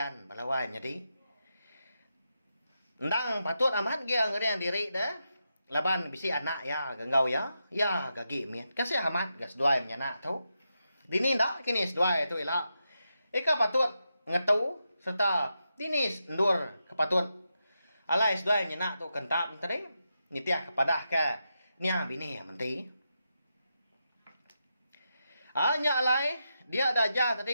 Balawai jadi. Ndang patut amat dia ngeriang diri dah. Laban bisi anak ya genggau ya. Ya gagi mian. Kasih amat gas duai menyanak tu. Dini ndak kini seduai tu ila. Eka patut ngetu serta dini ndur kepatut. Alai seduai menyanak tu kentap tadi. Nitiah kepada ke nia bini menti. Hanya alai dia ada aja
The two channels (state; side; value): inverted; both; correlation -0.86